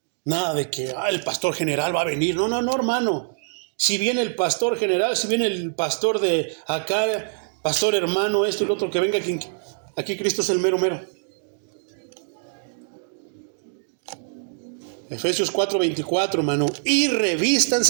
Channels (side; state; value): left; silent; digital silence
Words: Nada de que el pastor general va a venir. No, hermano. Si viene el pastor general, si viene el pastor de acá, pastor hermano, esto y lo otro, que venga aquí Cristo es el mero. Efesios 4:24, hermano. Y